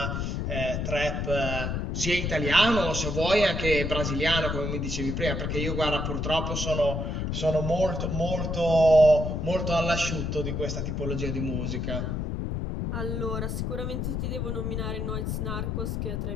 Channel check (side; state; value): left; noise; rumble, 2 dB below the sound